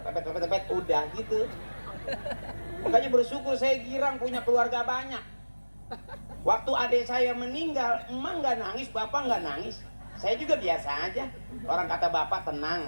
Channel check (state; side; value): inverted; both; correlation -1.00